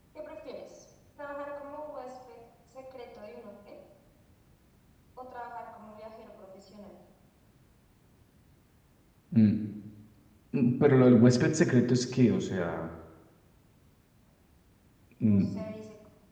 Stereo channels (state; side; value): identical; both; correlation 1.00